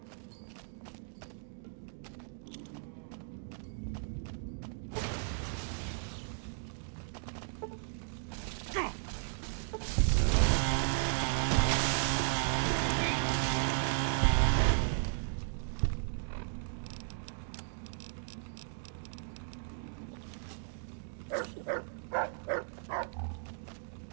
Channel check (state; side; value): silent; left; digital silence